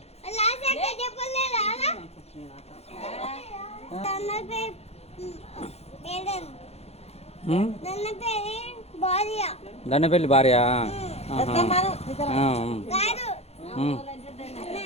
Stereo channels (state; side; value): late; right; 0.30 ms